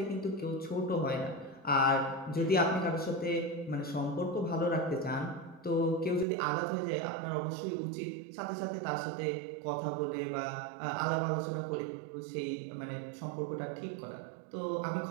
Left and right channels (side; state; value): left; drops out; at 6.2 s